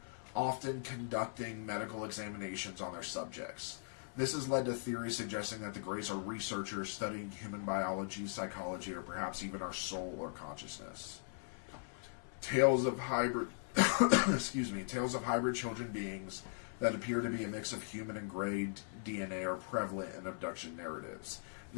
often conducting medical examinations on their subjects. This has led to theories suggesting that the Greys are researchers studying human biology, psychology, or perhaps even our soul or consciousness. Tales of hybrid tales of hybrid children beings that appear to be a mix of human and Grey DNA are prevalent in abduction narratives.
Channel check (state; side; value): silent; right; 52 dB below the other